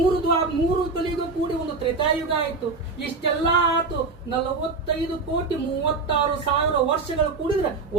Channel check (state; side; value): quieter; left; 4.1 dB